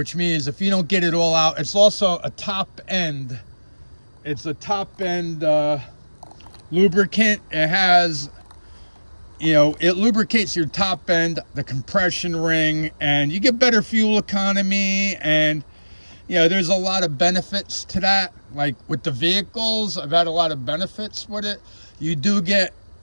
means if you don't get it all out, it's also a top end. It's a top end lubricant. It has, you know, it lubricates your top end, the compression ring, and you get better fuel economy. And, you know, there's a lot of benefits to that. Like with the vehicles, I've had a lot of benefits with it. You do get,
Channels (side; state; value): both; inverted; correlation -1.00